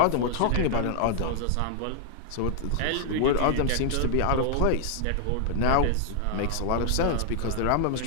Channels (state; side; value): different; both; correlation -0.01